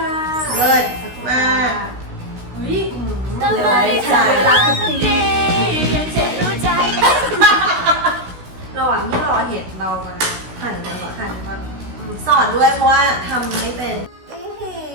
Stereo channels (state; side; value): late; left; 16 ms